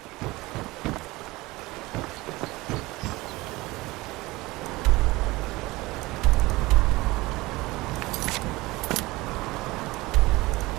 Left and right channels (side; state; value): left; quieter; 20.8 dB